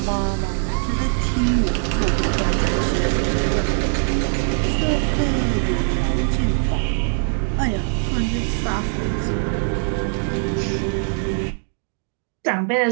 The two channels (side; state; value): left; silent; 58 dB below the other